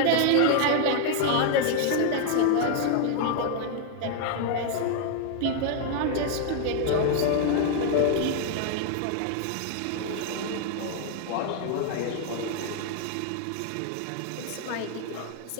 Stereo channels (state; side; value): different; both; correlation 0.00